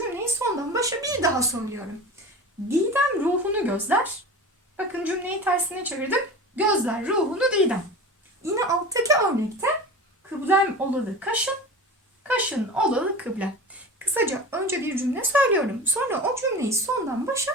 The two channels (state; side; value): normal; both; correlation 0.32